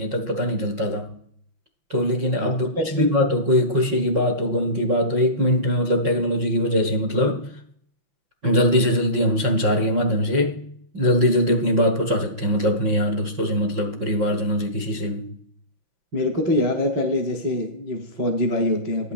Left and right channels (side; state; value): left; late; 5.9 ms